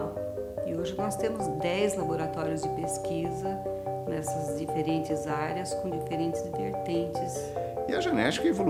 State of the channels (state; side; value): identical; both; correlation 1.00